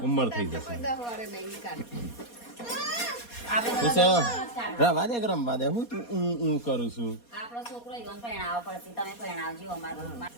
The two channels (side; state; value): right; late; 4.2 ms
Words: ઉંમર થઈ જશે કોઈ 10 વારે નહીં કાઢ શું છે રવા દે રમવા દે હું તું હું કરું છું આપણો છોકરો ઈવન પરણાવ પડશે તમે પરણાવજો અમારો